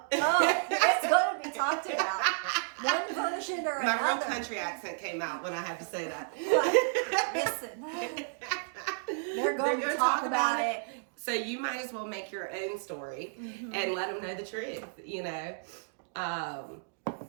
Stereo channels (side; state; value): left; silent; digital silence